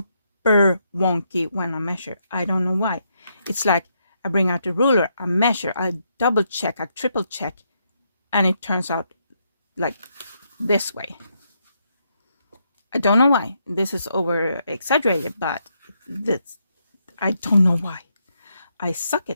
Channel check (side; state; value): both; inverted; correlation -0.78